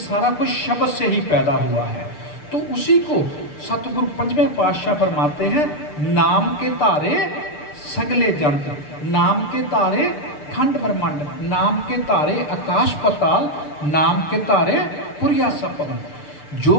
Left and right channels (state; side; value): late; right; 6.7 ms